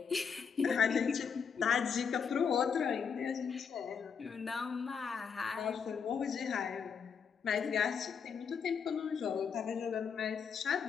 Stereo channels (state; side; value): quieter; right; 6.5 dB